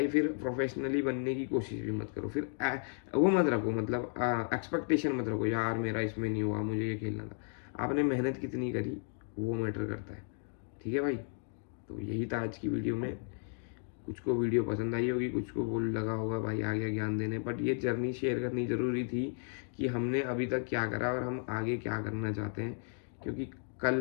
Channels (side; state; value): right; silent; 55 dB below the other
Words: फिर प्रोफेशनली बनने की कोशिश भी मत करो। फिर वो मत रखो, मतलब एक्सपेक्टेशन मत रखो, यार मेरा इसमें नहीं हुआ, मुझे ये खेलना था। आपने मेहनत कितनी करी वो मैटर करता है, ठीक है भाई। तो यही था आज की वीडियो में। कुछ को वीडियो पसंद आई होगी, कुछ को बोल लगा होगा भाई आ गया ज्ञान देने, बट ये जर्नी शेयर करनी ज़रूरी थी कि हमने अभी तक क्या करा और हम आगे क्या करना चाहते हैं। क्योंकि